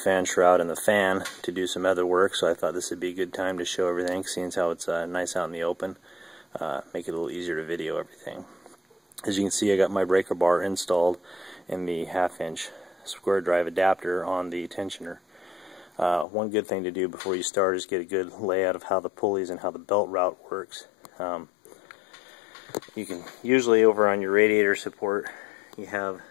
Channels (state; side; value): drops out; right; at 16.2 s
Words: shroud and the fan to do some other work, so I thought this would be a good time to show everything, seeing as how it's nice out in the open. Make it a little easier to video everything. As you can see, I got my breaker bar installed in the 1/2 inch square drive adapter on the tensioner. One good thing to do before you start is get a good layout of how the pulleys and how the belt route works. You can usually, over on your radiator support, you have